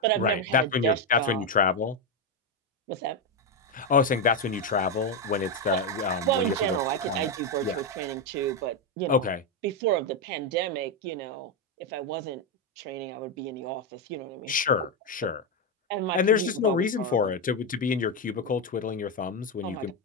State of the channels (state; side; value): normal; both; correlation 0.06